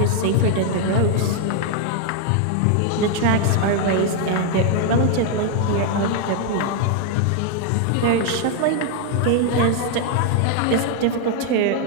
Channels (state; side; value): different; both; correlation 0.00